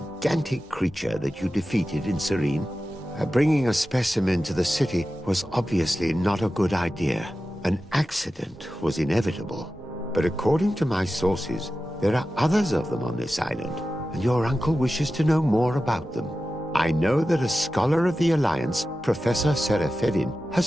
creature that you defeated in Serene? Bringing a specimen to the city was obviously not a good idea. An accident was inevitable. But according to my sources, there are others of them on this island, and your uncle wishes to know more about them. I know that a scholar of the Alliance, Professor Serafedin,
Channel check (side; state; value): both; normal; correlation 0.93